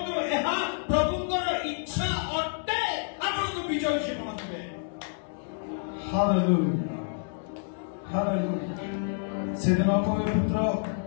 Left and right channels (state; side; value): silent; right; digital silence